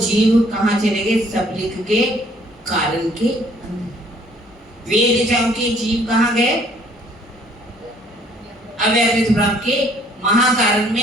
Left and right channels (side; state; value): both; normal; correlation 0.61